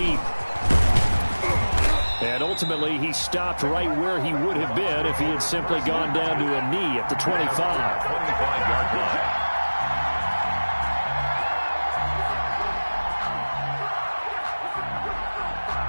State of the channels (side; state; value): both; inverted; correlation -1.00